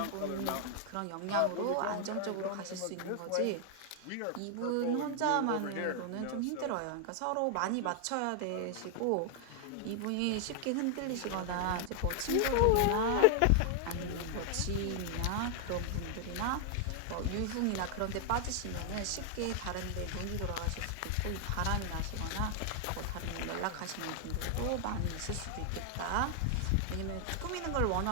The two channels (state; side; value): different; both; correlation 0.00